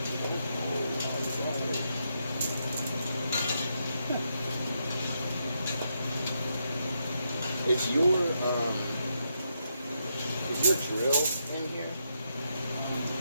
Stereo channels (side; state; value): both; inverted; correlation -0.81